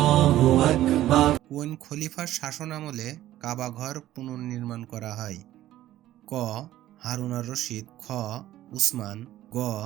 কোন খলিফার শাসনামলে কাবা ঘর পুনর্নির্মাণ করা হয়? ক. হারুন আর রশিদ, খ. উসমান, গ.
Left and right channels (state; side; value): quieter; left; 14.0 dB